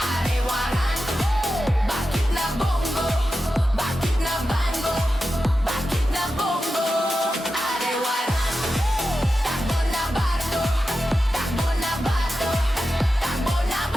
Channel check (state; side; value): normal; both; correlation 0.91